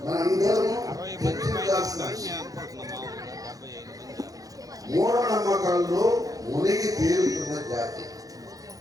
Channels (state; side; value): late; left; 0.17 ms